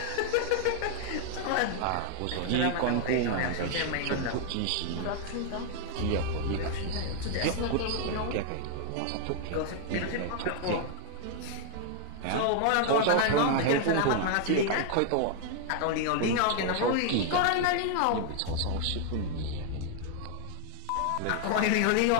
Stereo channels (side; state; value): both; different; correlation 0.00